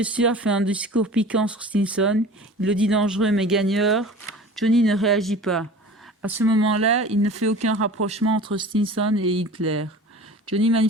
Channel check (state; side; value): normal; both; correlation 0.40